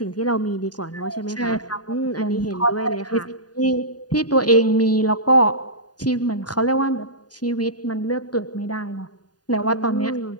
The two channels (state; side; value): late; right; 0.69 ms